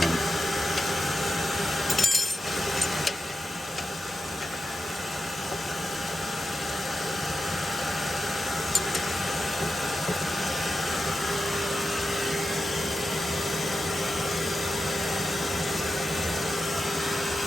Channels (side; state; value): both; normal; correlation 0.90